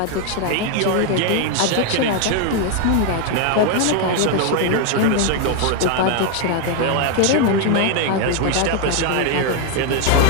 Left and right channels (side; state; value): both; different; correlation 0.01